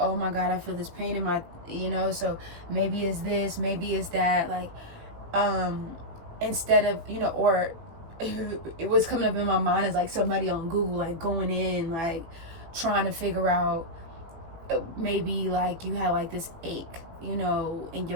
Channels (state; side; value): late; left; 18 ms